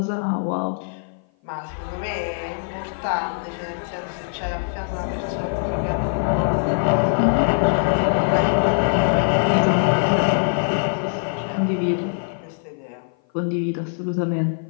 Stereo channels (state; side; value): silent; right; 56 dB below the other